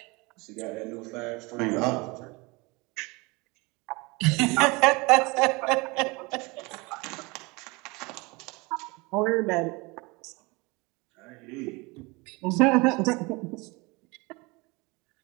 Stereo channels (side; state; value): left; quieter; 25.8 dB